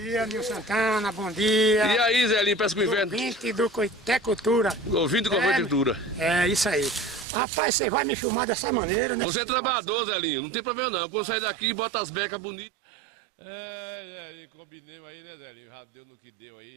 Nil Santana, bom dia. E aí, Zelinho, parece que o inverno... Ouvinte do Coitecultura. Ouvinte do Coitecultura. É, isso aí. Rapaz, você vai me filmar dessa maneira, né? Você é trabalhador, Zelinho, não tem problema não. Quando sair daqui, bota as becas bonitas. Zelinho, combinemos aí, né, Zelinho? Já deu no que deu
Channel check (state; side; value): drops out; left; at 7.2 s